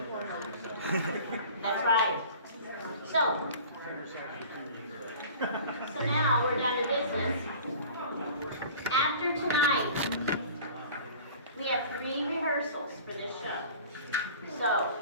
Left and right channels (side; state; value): both; inverted; correlation -0.43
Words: That's right. So now we're down to business. After tonight, we have 3 rehearsals for this show. So